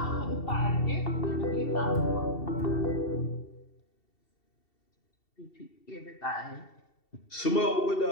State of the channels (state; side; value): late; right; 2.7 ms